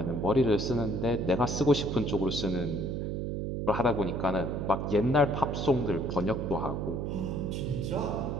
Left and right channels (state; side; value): noise; right; hum, 2 dB below the sound